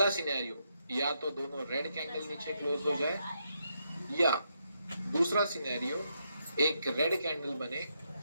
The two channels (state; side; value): inverted; both; correlation -0.80